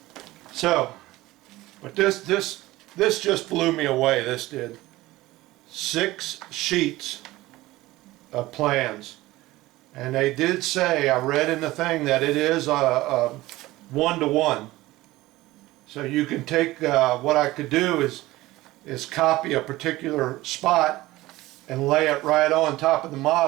So, but this just blew me away. This did. 6 sheets of plans, and they did say, I read in the thing, that it is a 1-to-1. So you can take what I could do is copy a particular spot and lay it right on top of the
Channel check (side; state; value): left; quieter; 18.1 dB